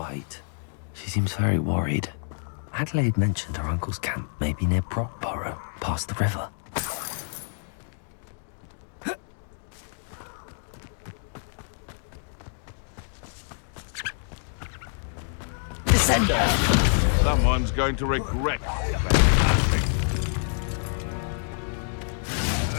She seems very worried. Adelaide mentioned her uncle's camp may be near Brockborough, past the river. Descender! Someone's going to regret that.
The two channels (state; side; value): silent; right; 60 dB below the other